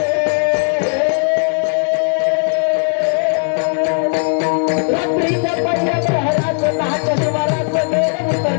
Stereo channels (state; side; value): silent; right; digital silence